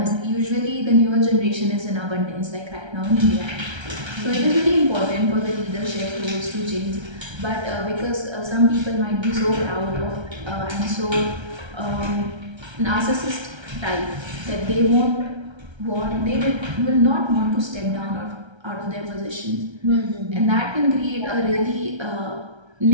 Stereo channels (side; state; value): left; late; 1.3 ms